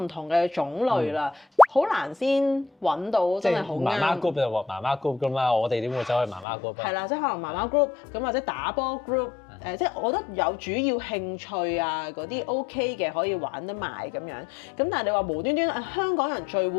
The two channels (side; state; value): right; drops out; at 6.5 s